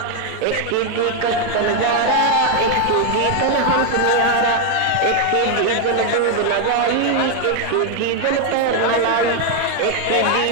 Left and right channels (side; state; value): both; different; correlation 0.01